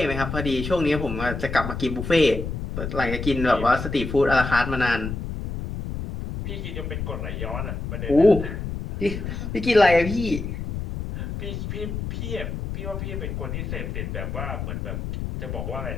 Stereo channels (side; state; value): left; noise; rumble, 5 dB below the sound